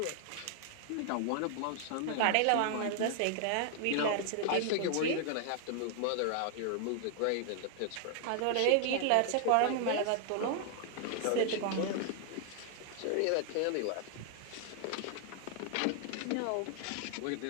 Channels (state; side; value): different; both; correlation 0.00